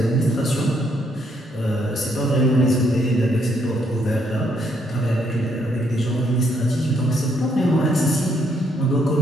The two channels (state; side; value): normal; both; correlation 0.72